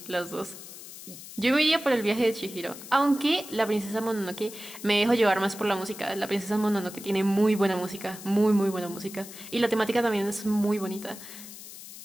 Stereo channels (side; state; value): left; noise; hiss, 14 dB below the sound